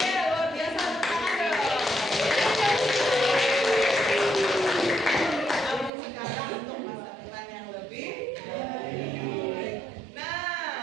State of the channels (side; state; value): left; drops out; at 5.9 s